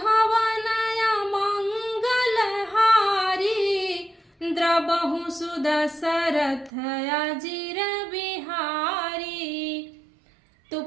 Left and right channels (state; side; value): drops out; left; at 6.7 s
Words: मंगल हारी, द्रबहु सुदशरथ अजीर बिहारी। तो